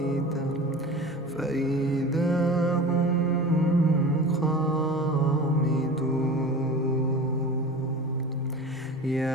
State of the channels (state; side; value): normal; both; correlation 0.35